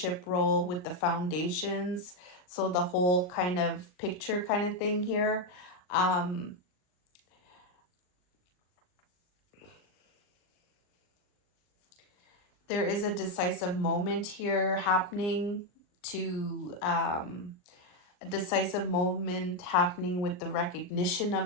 role with the foundations. So the whole kind of picture kind of thing here. Um, there is a decisive moment here happening to a decisive moment happening with the recognition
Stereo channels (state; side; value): late; right; 39 ms